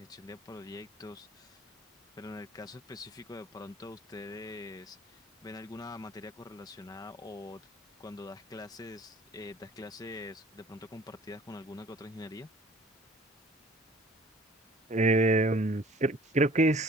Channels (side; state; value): both; normal; correlation 0.51